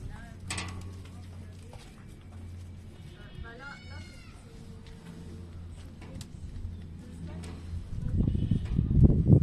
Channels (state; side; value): identical; both; correlation 1.00